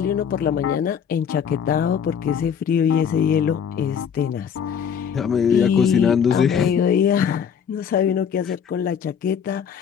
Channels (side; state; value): right; quieter; 7.6 dB